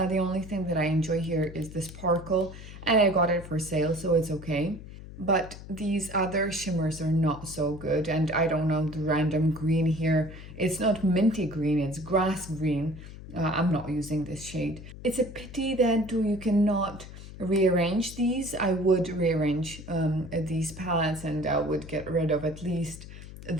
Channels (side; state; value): left; noise; hum, 14 dB below the sound